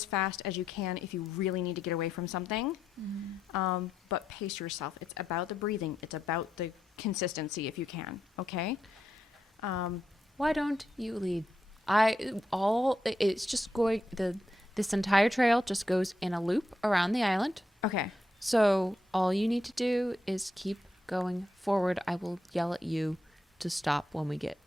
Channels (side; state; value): both; normal; correlation 0.82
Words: fast as you can if you really need to get away from something. But pace yourself. It's about the breathing. It's about the consistency if you can. Okay? Why don't you lead? It's just going this entire trail just goes in a loop around the island. Okay. So all you need to do is keep going forward. I will yell at you to stop when we get